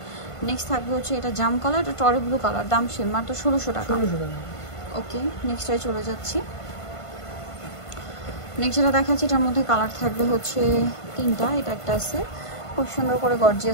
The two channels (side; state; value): right; late; 1.5 ms